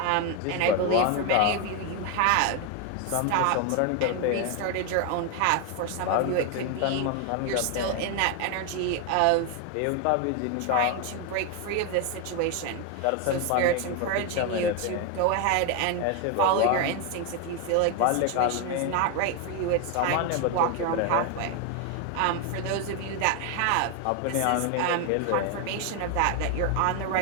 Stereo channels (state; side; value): different; both; correlation 0.01